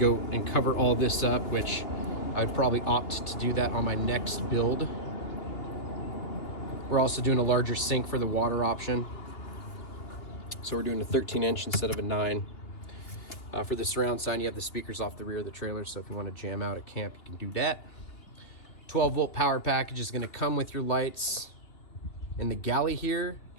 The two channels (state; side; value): late; right; 2.9 ms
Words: and cover all this up, which I'd probably opt to do that on my next build. We're also doing a larger sink for the water option. So we're doing a 13-inch instead of a 9. For the surround sound, you have the speakers off the rear of the trailer, so if you want to jam out at camp, you can do that. 12 volt power package is going to come with your lights in the galley here,